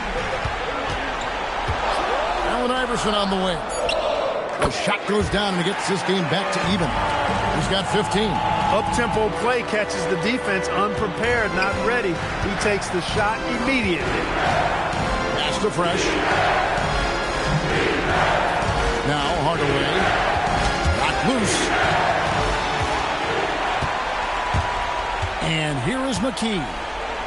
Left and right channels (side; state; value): both; identical; correlation 1.00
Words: Allen Iverson on the wing. The shot goes down and gets this game back to even. He's got 15. Up-tempo play catches the defense unprepared, not ready. He takes the shot immediately. Pass to Fresh. Now Hardaway. Knocked loose. And here is McKee.